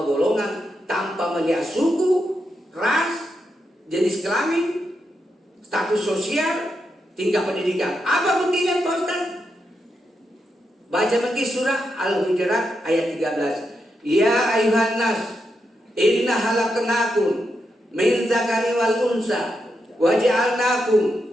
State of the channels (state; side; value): normal; both; correlation 0.84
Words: golongan tanpa melihat suku, ras, jenis kelamin, status sosial, tingkat pendidikan. Apa buktinya Pak Ustaz? Baca lagi surah Al-Hujurat ayat 13. Ya ayuhan nas, inna halaknakum min zakari wal unsa waja'alnakum